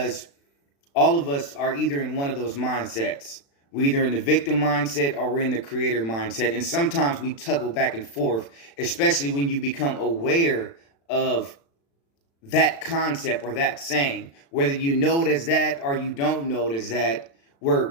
all of us are either in one of those mindsets. We're either in the victim mindset or we're in the creator mindset. And sometimes we toggle back and forth, especially when you become aware of that concept or that saying. Whether you know it as that or you don't know it as that,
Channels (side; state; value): right; late; 36 ms